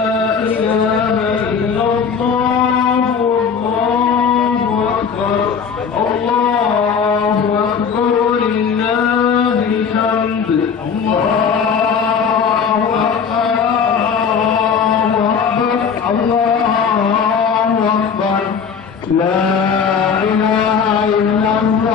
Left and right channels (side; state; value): right; quieter; 6.5 dB